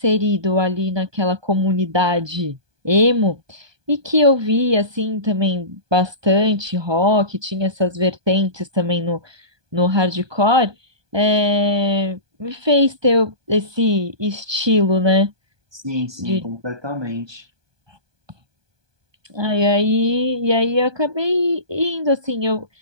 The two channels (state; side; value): late; left; 1.2 ms